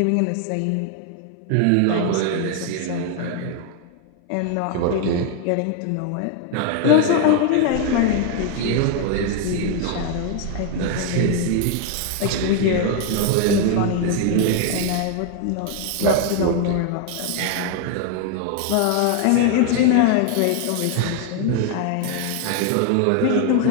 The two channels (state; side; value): different; both; correlation 0.00